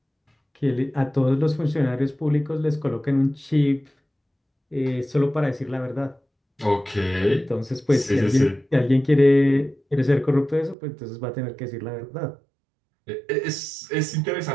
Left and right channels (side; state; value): left; drops out; at 10.8 s